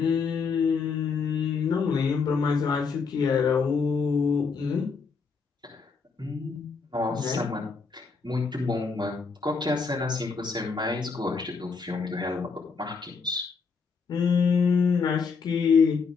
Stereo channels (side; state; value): right; quieter; 5.1 dB